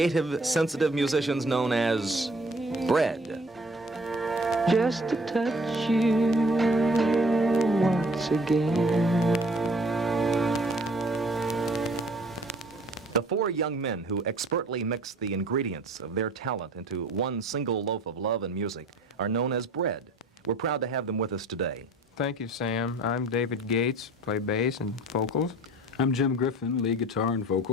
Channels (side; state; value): both; normal; correlation 0.53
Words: sensitive musicians known as Bread. Just to touch you once again. The four young men who expertly mix the ingredients of their talent into one single loaf of love and music are known as Bread. We're proud to have them with us today. Thank you, Sam. I'm David Gates, play bass and vocals. I'm Jim Griffin, lead guitar and